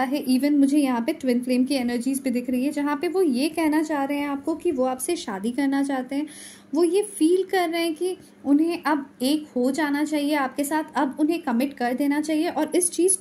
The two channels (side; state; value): both; identical; correlation 1.00